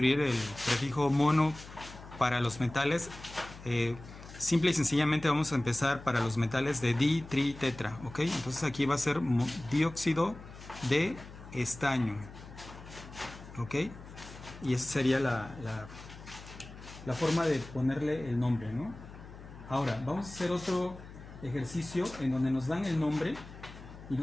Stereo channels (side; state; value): left; noise; hum, 16 dB below the sound